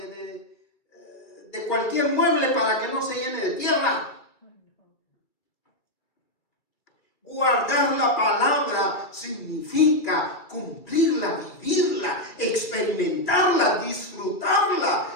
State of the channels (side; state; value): right; late; 2.6 ms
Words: de cualquier mueble para que no se llene de tierra. Guardar la palabra significa cumplirla, vivirla, experimentarla,